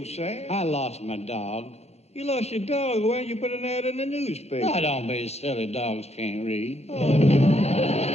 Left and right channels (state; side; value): late; right; 0.31 ms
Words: sad? I lost my dog. You lost your dog. Why didn't you put an ad in the newspaper? Now, don't be silly. Dogs can't read.